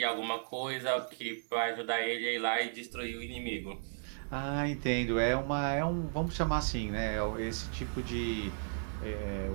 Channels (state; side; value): silent; left; digital silence